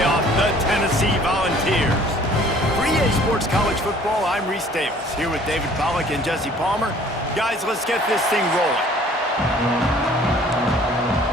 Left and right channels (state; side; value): normal; both; correlation 0.54